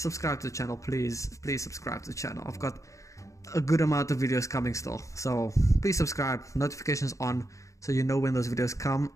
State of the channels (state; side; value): late; right; 0.15 ms